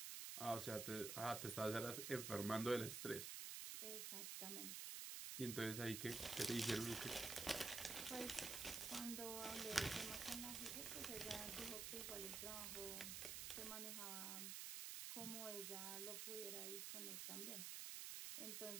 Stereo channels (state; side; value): noise; right; hiss, 3 dB below the sound